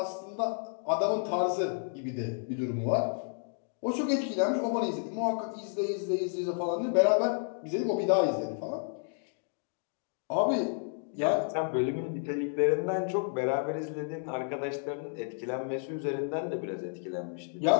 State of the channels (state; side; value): silent; right; 57 dB below the other